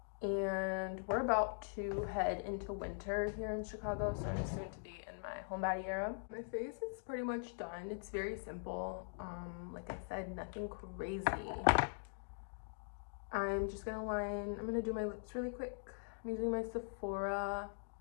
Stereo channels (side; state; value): right; silent; digital silence